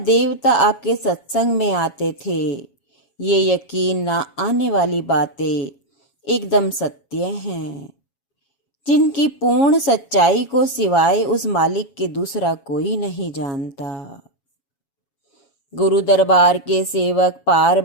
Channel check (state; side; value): late; right; 7.3 ms